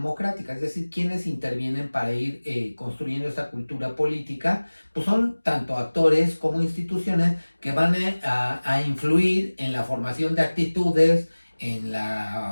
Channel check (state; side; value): inverted; both; correlation -1.00